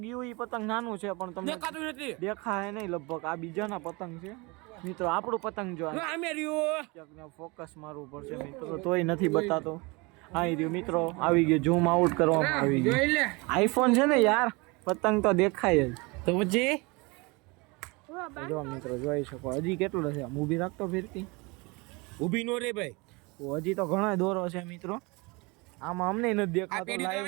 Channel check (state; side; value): quieter; left; 26.7 dB